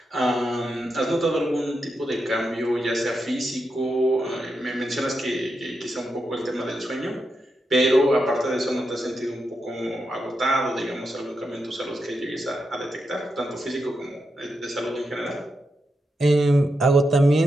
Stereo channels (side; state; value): both; normal; correlation 0.86